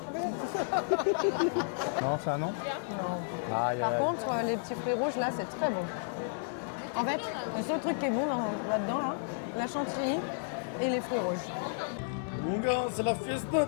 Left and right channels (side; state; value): right; silent; digital silence